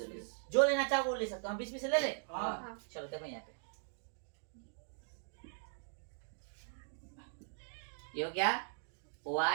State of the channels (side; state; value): left; silent; digital silence